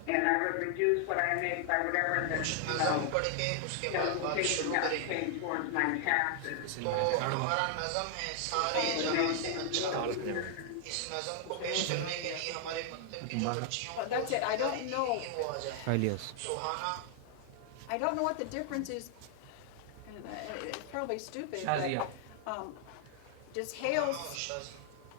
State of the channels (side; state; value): both; different; correlation 0.00